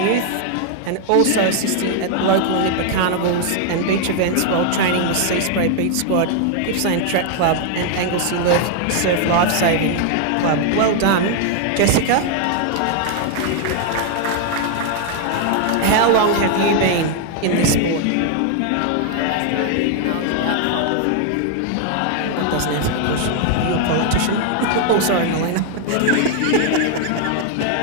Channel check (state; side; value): different; both; correlation 0.00